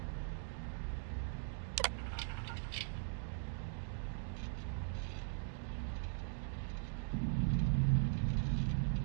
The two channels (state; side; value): silent; left; digital silence